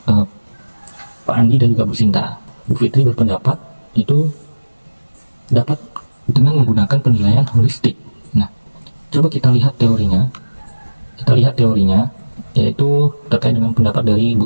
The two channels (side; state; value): both; inverted; correlation -1.00